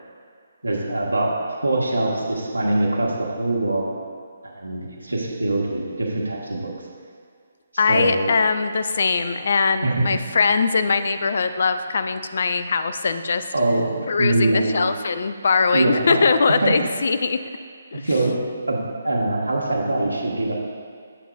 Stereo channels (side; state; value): both; inverted; correlation -0.84